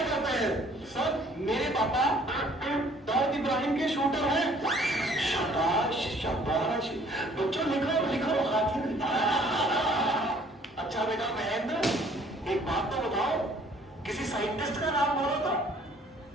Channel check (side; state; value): both; normal; correlation 0.58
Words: करते हैं? सर मेरे पापा दाऊद इब्राहिम के शूटर हैं। शाबाश शाबाश। बच्चों लिखो लिखो हाथी। अच्छा बेटा महेंद्र एक बात तो बताओ, किसी साइंटिस्ट का नाम बोलो तो।